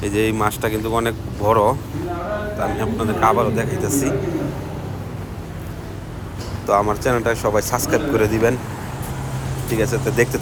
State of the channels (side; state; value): both; identical; correlation 1.00